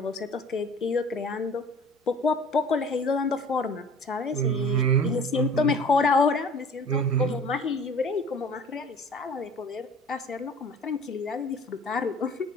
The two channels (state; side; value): normal; both; correlation 0.46